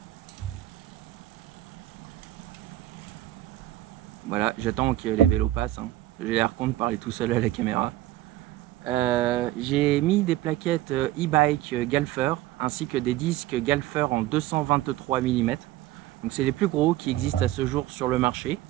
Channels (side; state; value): left; quieter; 15.2 dB